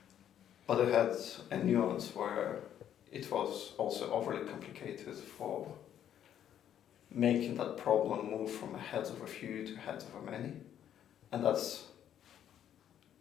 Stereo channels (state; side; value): quieter; right; 10.2 dB